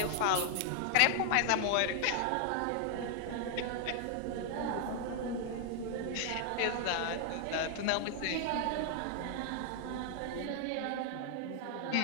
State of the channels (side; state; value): both; different; correlation 0.00